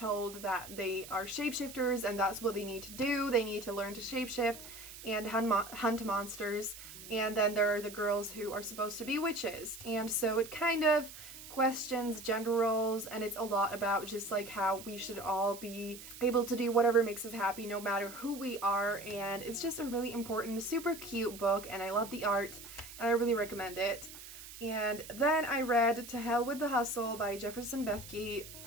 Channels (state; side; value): noise; right; hiss, 14 dB below the sound